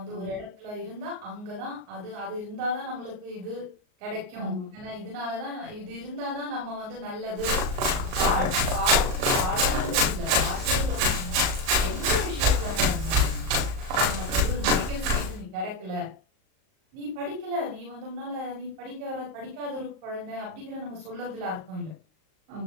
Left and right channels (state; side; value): late; left; 38 ms